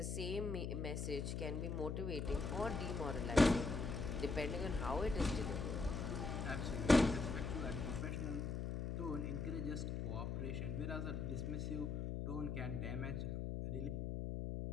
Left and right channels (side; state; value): left; noise; hum, 2 dB below the sound